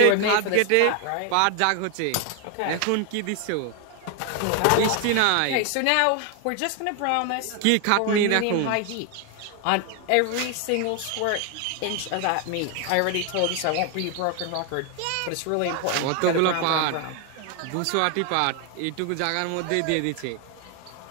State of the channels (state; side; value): different; both; correlation 0.01